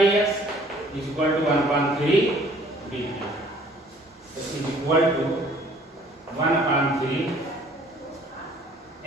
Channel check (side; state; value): both; normal; correlation 0.56